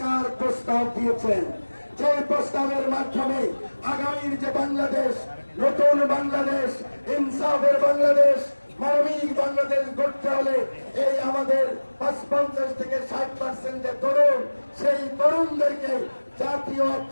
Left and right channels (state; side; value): inverted; both; correlation -1.00